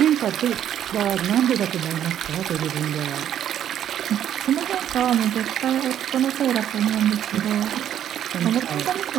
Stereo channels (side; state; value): left; quieter; 10.4 dB